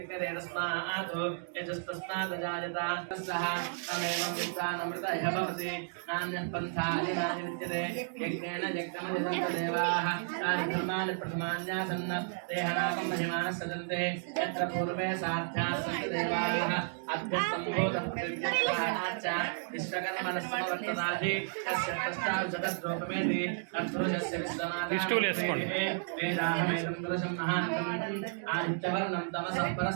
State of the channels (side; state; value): left; silent; digital silence